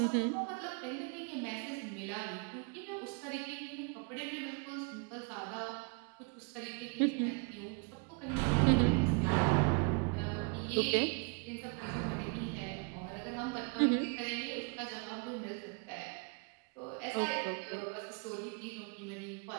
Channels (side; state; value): left; quieter; 34.9 dB